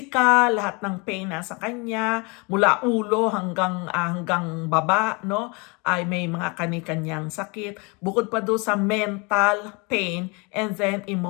lahat ng pain na sa kanya, mula ulo hanggang baba, no? Ay may mga kani-kanyang sakit. Bukod pa doon sa mental pain and then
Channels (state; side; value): quieter; right; 29.6 dB